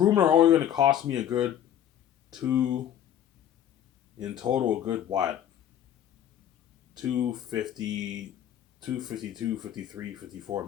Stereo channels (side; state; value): right; quieter; 10.4 dB